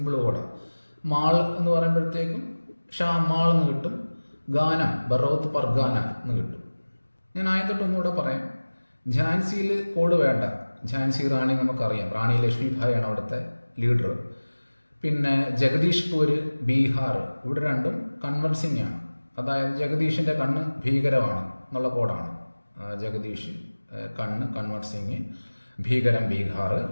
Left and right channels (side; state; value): both; inverted; correlation -1.00